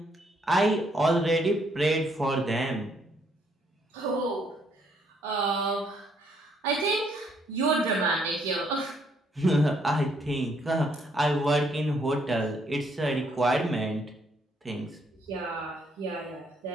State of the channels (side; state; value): both; normal; correlation 0.70